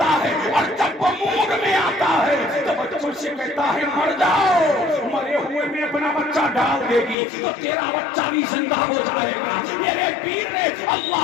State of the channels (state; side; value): drops out; right; at 7.2 s